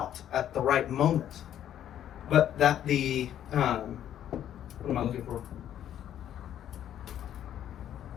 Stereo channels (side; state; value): right; quieter; 10.8 dB